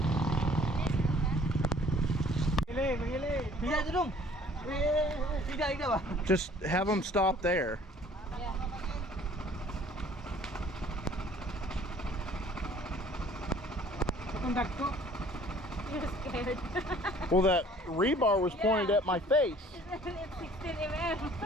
Just have them stop there. You're scared. Well, that rebar was pointed at my face. It's 16 mm.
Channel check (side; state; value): both; normal; correlation 0.55